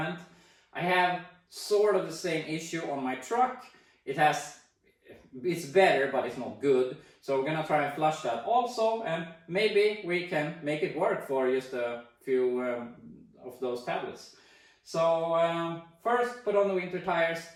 I have sort of the same issue on my truck. It's better, but it's not good. So we're gonna try and flush that also, and maybe we can make it work for just a few of those tablets. So first put on the winter tires,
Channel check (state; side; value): identical; both; correlation 1.00